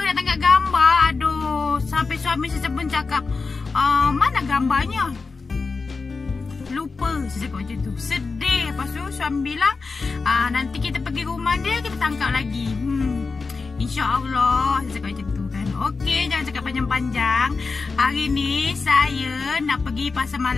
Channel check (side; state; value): right; quieter; 4.3 dB